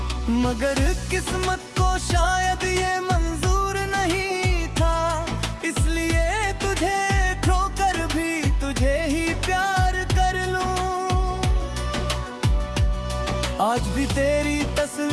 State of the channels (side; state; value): both; identical; correlation 1.00